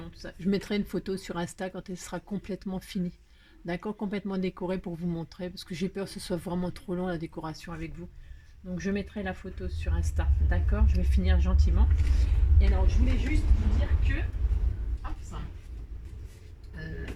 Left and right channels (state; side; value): identical; both; correlation 1.00